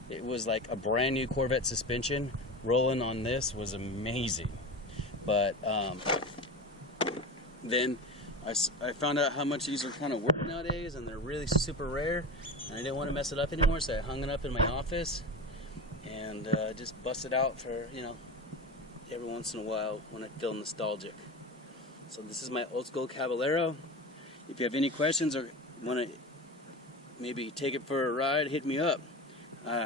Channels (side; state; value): both; normal; correlation 0.28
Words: It was like a brand new Corvette suspension. Rolling on this was amazing. But then I found out how much these are kind of worth nowadays, and they're really super rare, and I didn't want to mess it up anymore, so I hung it up in my office and just bust it out for, every once in a while when I feel nostalgic. So this is my old school Caballero. If you have any questions or want to maybe take it for a ride, hit me up.